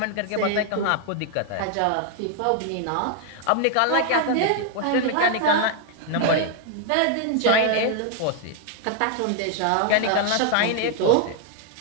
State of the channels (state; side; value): different; both; correlation 0.00